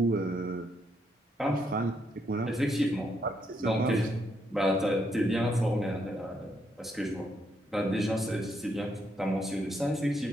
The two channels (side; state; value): both; normal; correlation 0.76